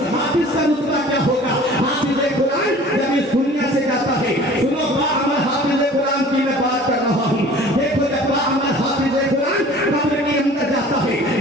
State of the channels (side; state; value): both; normal; correlation 0.46